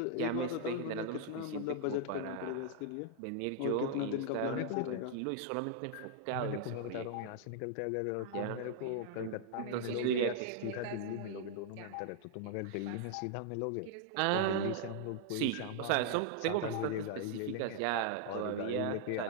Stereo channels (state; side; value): different; both; correlation -0.01